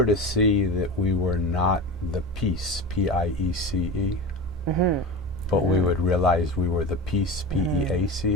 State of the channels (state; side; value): normal; both; correlation 0.28